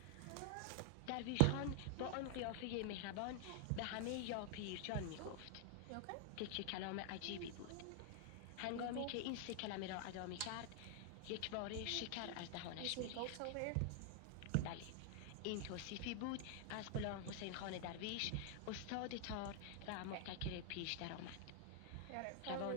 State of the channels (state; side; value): different; both; correlation 0.00